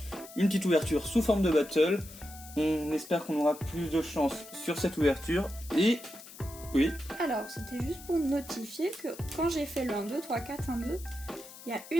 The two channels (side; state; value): left; noise; hiss, 17 dB below the sound